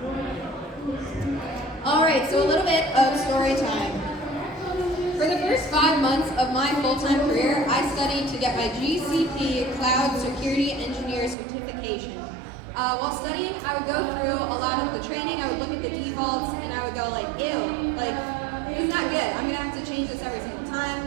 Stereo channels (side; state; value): left; drops out; at 11.4 s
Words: All right, so a little bit of story time. For the first 5 months of my full-time career, I studied to get my GCP Cloud Security Engineer certification. While studying, I would go through a lot of the training, I would look at the defaults, and I would go like, ew, like, this is not good. I'm gonna have to change this every single